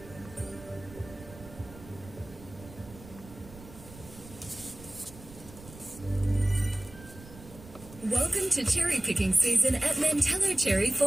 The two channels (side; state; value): right; noise; rumble, 18 dB below the sound